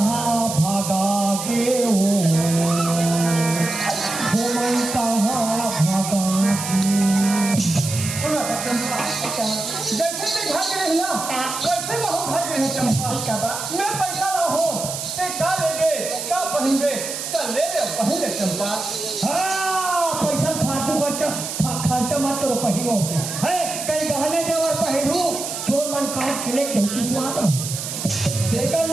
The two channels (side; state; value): right; noise; hiss, 6 dB below the sound